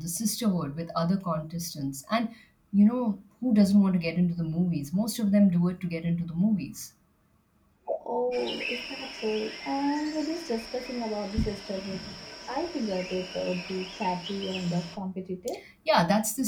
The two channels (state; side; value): identical; both; correlation 1.00